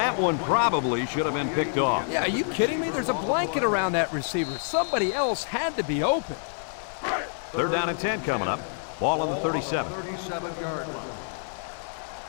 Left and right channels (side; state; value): right; silent; digital silence